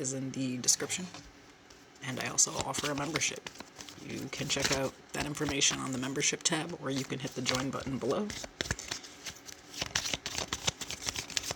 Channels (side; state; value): both; normal; correlation 0.98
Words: in the description. And I also offer a membership. You can check out that information on the membership tab, or you can hit the join button below.